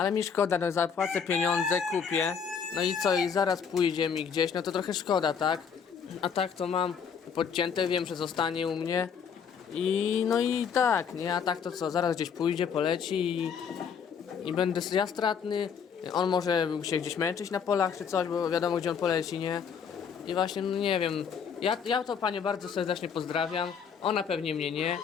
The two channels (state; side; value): quieter; right; 6.9 dB